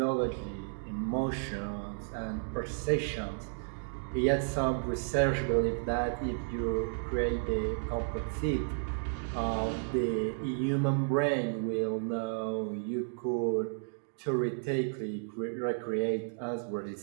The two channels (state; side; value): silent; left; digital silence